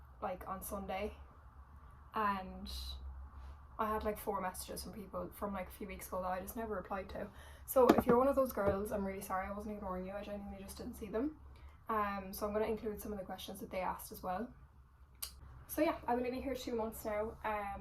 like on Sunday, and I had like 4 messages from people from like a few weeks ago that I just never replied to. So if you're one of those girls, I'm really sorry, I wasn't ignoring you, I genuinely just didn't see them. So I'm going to include some of the questions that they asked as well. So yeah, I've been living here 2 months now.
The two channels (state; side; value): identical; both; correlation 1.00